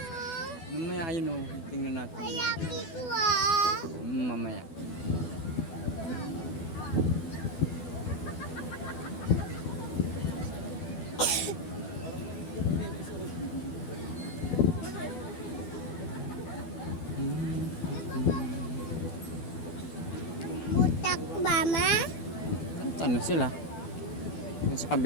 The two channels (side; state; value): right; late; 12 ms